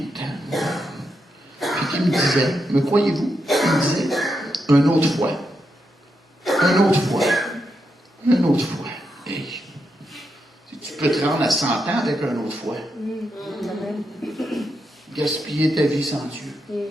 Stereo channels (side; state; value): both; normal; correlation 0.84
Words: temps. Puis qui me disait, me croyez-vous? Il me disait, une autre fois. Une autre fois. Une autre fois. Hey. Tu peux te rendre à 100 ans avec une autre fois. Gaspiller ta vie sans Dieu.